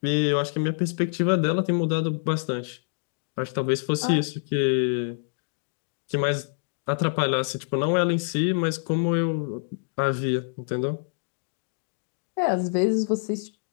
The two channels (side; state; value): right; silent; digital silence